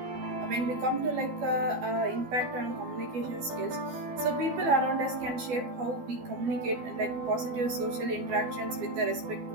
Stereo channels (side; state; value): left; late; 12 ms